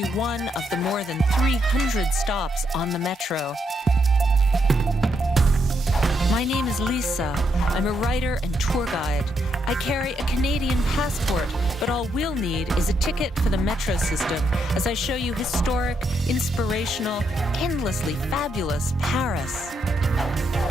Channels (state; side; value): normal; both; correlation 0.78